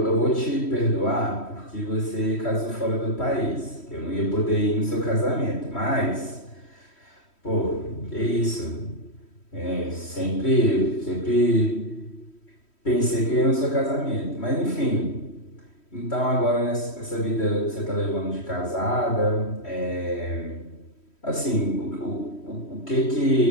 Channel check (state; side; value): late; right; 3.1 ms